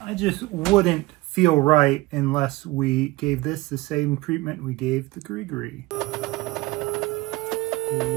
just wouldn't feel right unless we gave this the same treatment we gave the grigri.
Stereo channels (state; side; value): quieter; left; 20.3 dB